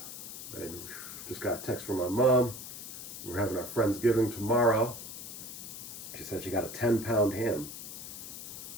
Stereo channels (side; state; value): left; noise; hiss, 10 dB below the sound